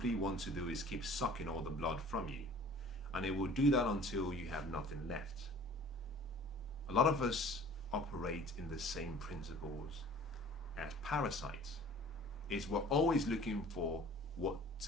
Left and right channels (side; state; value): both; normal; correlation 0.48